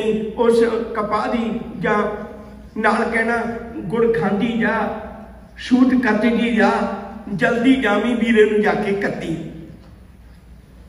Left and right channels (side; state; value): both; identical; correlation 1.00